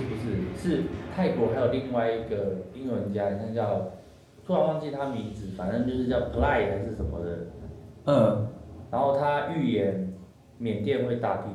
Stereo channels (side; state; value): both; identical; correlation 1.00